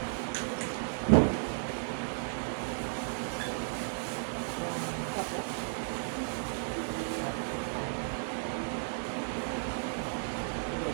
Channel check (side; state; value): left; silent; digital silence